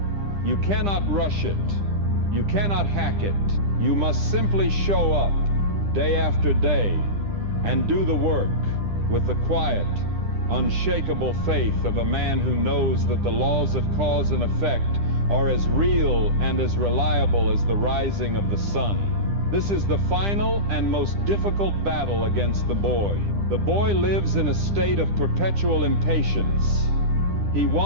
You cannot rush it. You cannot hack it. You must simply show up day after day and do the work with the quiet, unshakable faith of a man who knows that the laws of cause and effect are as real and as reliable as the rising of the sun. This is the final and most difficult battle against the boy. The boy lives in a state of perpetual impatience. He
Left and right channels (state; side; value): late; left; 10 ms